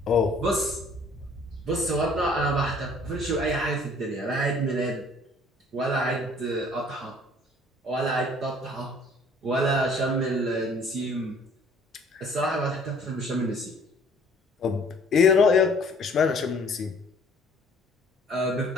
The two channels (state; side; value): normal; both; correlation 0.55